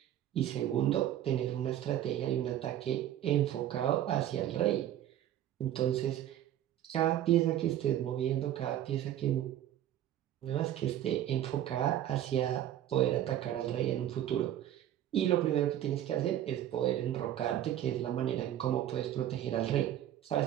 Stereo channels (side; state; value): left; quieter; 11.8 dB